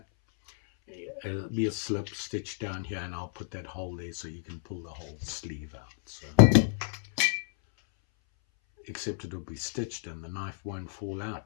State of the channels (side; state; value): right; silent; 57 dB below the other